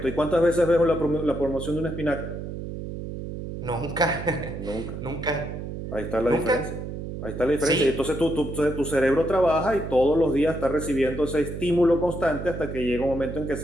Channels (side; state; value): right; noise; hum, 7 dB below the sound